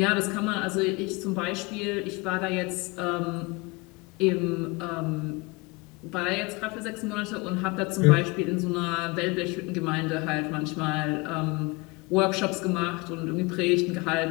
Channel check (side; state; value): right; quieter; 26.1 dB